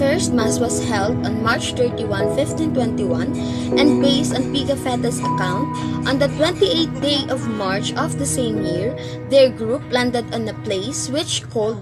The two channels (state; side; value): identical; both; correlation 1.00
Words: first Mass was held on March 31, 1521, and based on Pigafetta's account, on the 28th day of March of the same year, their group landed on a place which